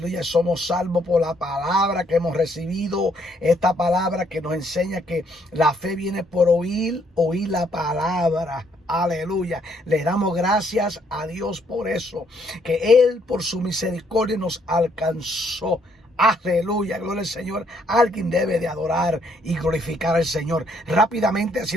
somos salvos por la palabra que hemos recibido. Esta palabra que nos enseña que la fe viene por oír la palabra. Aleluya. Le damos gracias a Dios por eso, que Él por su misericordia nos alcanzó. Aleluya, gloria al Señor. Alguien debe de adorar y glorificar al Señor. Rápidamente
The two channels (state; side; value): normal; both; correlation 0.69